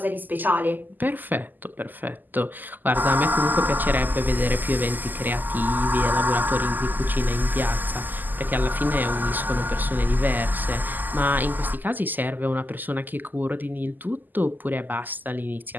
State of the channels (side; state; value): left; late; 0.086 ms